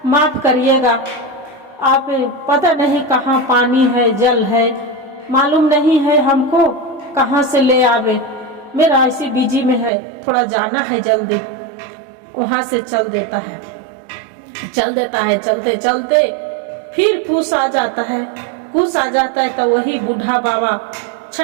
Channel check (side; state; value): left; drops out; at 9.9 s